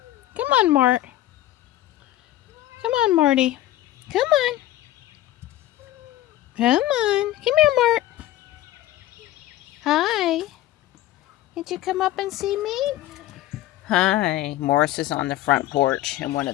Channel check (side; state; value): right; quieter; 14.6 dB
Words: Come on, Mart. Come on, Marty. Come on. Come on. Come here, Mart. Hi. Did you come up and see me? Hi. Morris is on the front porch in one